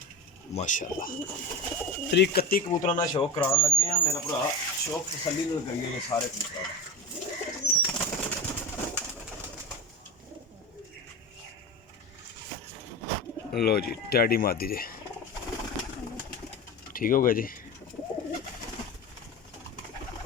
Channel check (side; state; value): both; normal; correlation 0.25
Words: माशाल्लाह 31 कबूतर का शौक कराने लगे हैं मेरा भरा। शौक तसल्ली करिए सारे कबूतर। लो जी टैडी मादी जी ठीक हो गया जी।